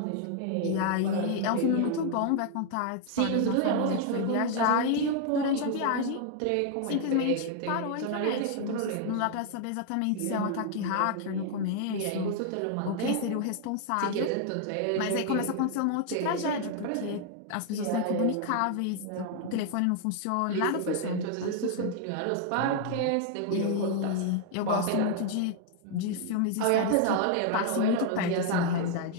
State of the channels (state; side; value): different; both; correlation 0.00